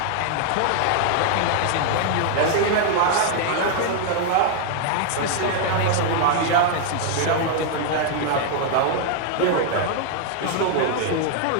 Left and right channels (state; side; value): different; both; correlation 0.00